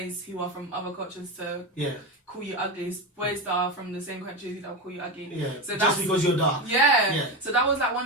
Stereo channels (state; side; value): normal; both; correlation 0.18